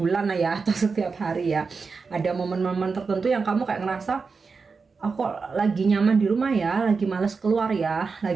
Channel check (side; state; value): left; quieter; 4.8 dB